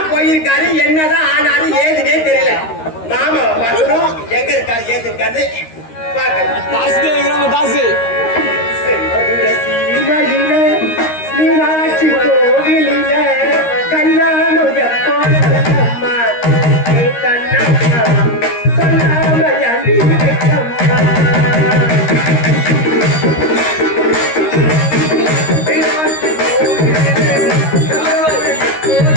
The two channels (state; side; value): late; right; 13 ms